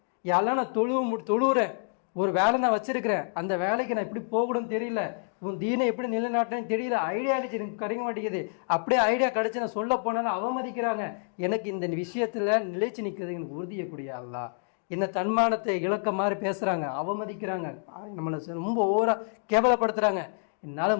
யாரெல்லாம் நான் தொழுவுறேன், ஒரு வேலை நான் வச்சிருக்கிறேன், அந்த வேலைக்கு நான் எப்படி போகணும்னு தெரியல, உன் தீனை எப்படி நிலைநாட்டுறேன்னு தெரியல, ஐடியா அழிச்சு எனக்கு கிடைக்க மாட்டேங்குது. அப்படியே ஐடியா கிடைச்சி நான் சொல்ல போனாலும் அவமதிக்கிறாங்க. எனக்கு இந்த விஷயத்துல நிலைச்சு நிற்கிறது எனக்கு உறுதியக்கூடிய அல்லா. என்ன தன்மானத்தை இழக்க மாதிரி பேசுறாங்க, அவமதிக்கிறாங்க, நம்மளை ரொம்ப ஓவரா கேவலப்படுத்துறாங்க.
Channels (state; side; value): silent; right; 59 dB below the other